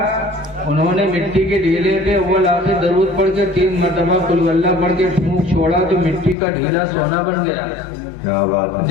انہوں نے مٹی کے ڈھیلے پہ اول آخر درود پڑھ کے 3 مرتبہ قل ہو اللہ پڑھ کے پھونک چھوڑا تو مٹی کا ڈھیلا سونا بن گیا۔ کیا بات ہے،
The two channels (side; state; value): right; drops out; at 6.4 s